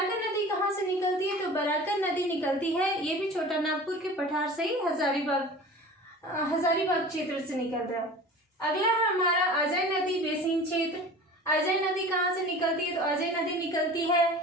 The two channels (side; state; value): both; normal; correlation 0.39